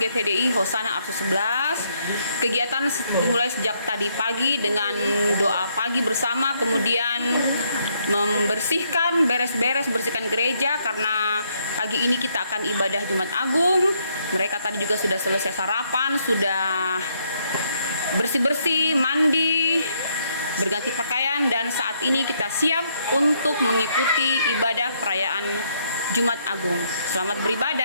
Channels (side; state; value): both; inverted; correlation -0.72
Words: Hosana Arso 11. Kegiatan dimulai sejak tadi pagi dengan doa pagi bersama, kemudian membersihkan, bersihkan gereja karena pagi ini kita akan ibadah Jumat Agung. Mereka tadi juga sudah selesai sarapan, sudah bersih-bersih, mandi, berganti pakaian, dan saat ini kita siap untuk mengikuti ibadah perayaan Jumat Agung. Selamat